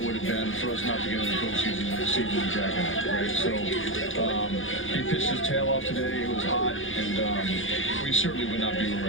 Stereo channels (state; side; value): late; right; 0.58 ms